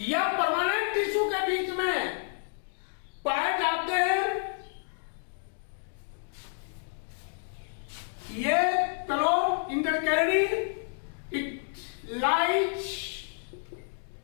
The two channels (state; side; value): silent; right; digital silence